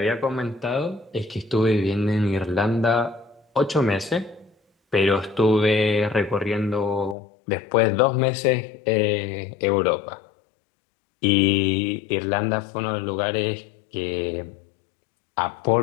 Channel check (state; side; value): drops out; right; at 7.2 s